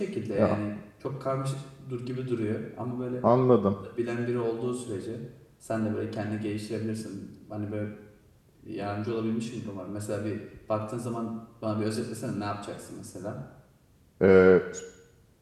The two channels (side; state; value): both; identical; correlation 1.00